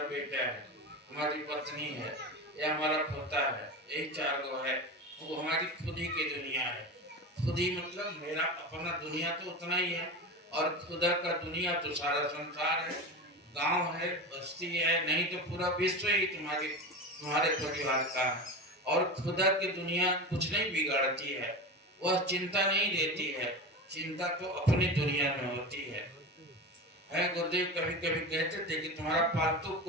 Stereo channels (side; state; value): both; normal; correlation 0.26